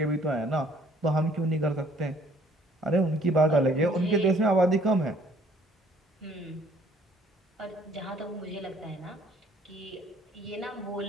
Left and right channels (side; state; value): both; normal; correlation 0.59